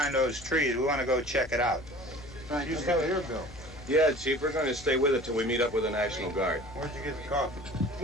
those trees. We want to go check it out. You still here, Bill? Yeah, Chief, we're going to stay with it till we meet up with the National Guard. Where'd you get the coffee?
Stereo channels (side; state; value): left; noise; hum, 19 dB below the sound